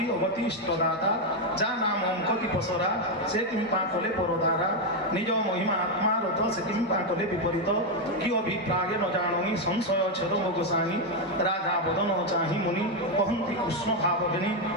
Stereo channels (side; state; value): both; normal; correlation 0.04